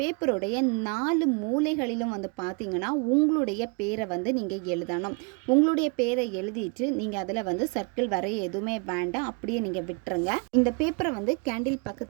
4 மூலைகளிலும் வந்து பார்த்தீங்கன்னா உங்களுடைய பேரை வந்து நீங்கள் எழுதணும். உங்களுடைய பேரை எழுதிட்டு நீங்கள் அதில் வந்து சர்க்கிள் வரைய எதுவுமே வேண்டாம், அப்படியே நீங்கள் விட்டுருங்க. இந்த பேப்பரை வந்து கேண்டில்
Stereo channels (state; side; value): quieter; left; 33.6 dB